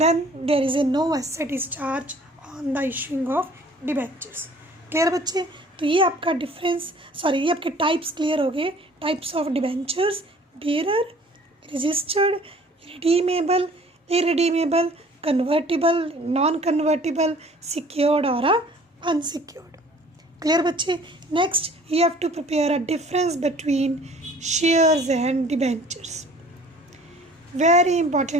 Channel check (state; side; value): normal; both; correlation 0.52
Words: there is a no asset is charge on the issuing of debentures. Clear बच्चे? तो ये आपका ये आपके टाइप्स क्लियर हो गए. Types of debentures, bearer, registered, redeemable irredeemable, convertible, non-convertible, secured or unsecured. Clear बच्चे? Next you have to prepare a difference between shares and debentures. Very